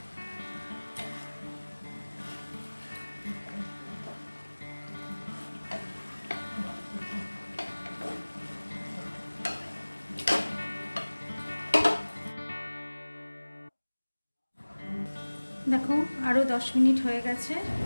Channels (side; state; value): both; inverted; correlation -1.00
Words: আরও 10 মিনিট হয়ে গেছে,